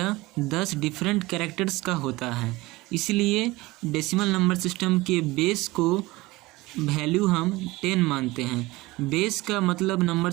10 डिफरेंट कैरेक्टर्स का होता है, इसलिए डेसिमल नंबर सिस्टम के बेस को वैल्यू हम 10 मानते हैं। बेस का मतलब नंबर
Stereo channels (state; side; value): quieter; left; 20.5 dB